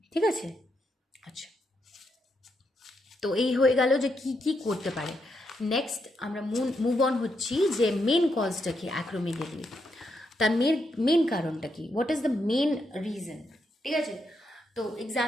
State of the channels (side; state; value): both; normal; correlation 0.80